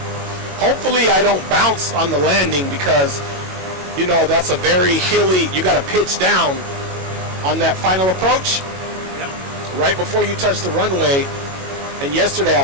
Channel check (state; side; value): late; left; 22 ms